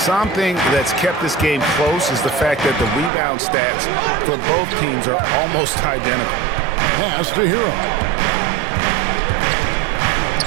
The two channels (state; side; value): drops out; left; at 3.1 s